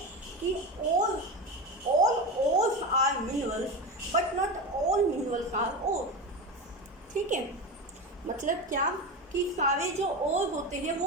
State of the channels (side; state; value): both; normal; correlation 0.21